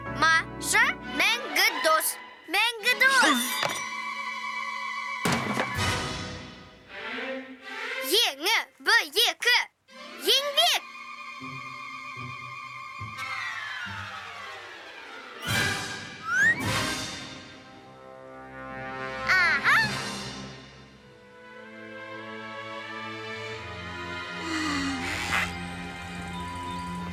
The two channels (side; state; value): both; identical; correlation 1.00